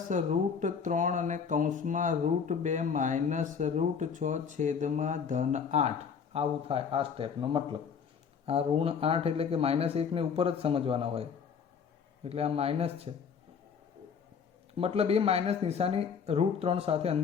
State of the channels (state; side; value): quieter; right; 6.6 dB